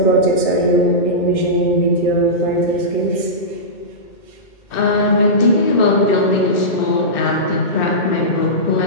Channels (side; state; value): right; late; 2.1 ms